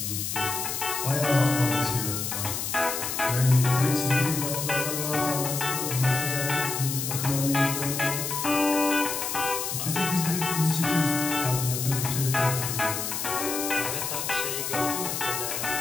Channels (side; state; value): left; noise; hiss, 3 dB below the sound